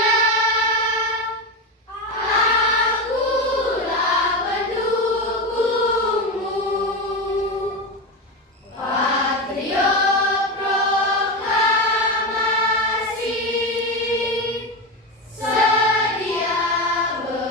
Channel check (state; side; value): normal; both; correlation 0.17